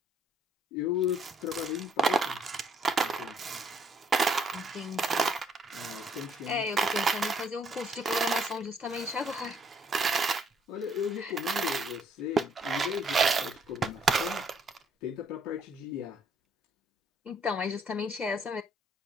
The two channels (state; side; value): normal; both; correlation 0.66